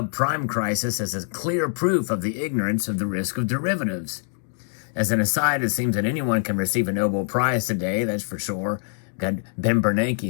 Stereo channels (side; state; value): right; silent; 58 dB below the other